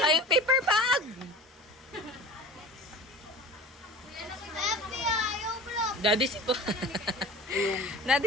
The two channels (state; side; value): normal; both; correlation 0.38